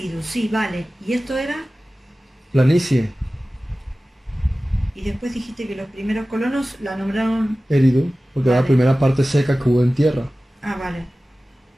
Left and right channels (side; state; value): both; normal; correlation 0.96